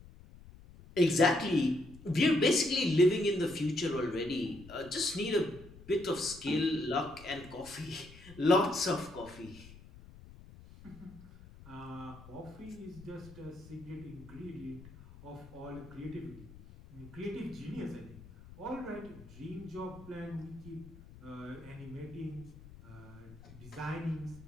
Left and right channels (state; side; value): noise; left; rumble, 19 dB below the sound